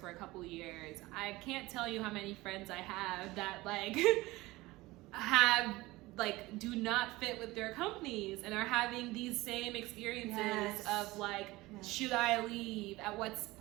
a couple of years, I can't tell you how many friends I have that like do not fit with their companies and are having these same experiences of like, should I leave? At what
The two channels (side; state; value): left; quieter; 19.9 dB